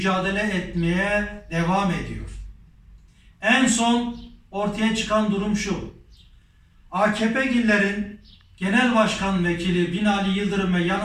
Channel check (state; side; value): identical; both; correlation 1.00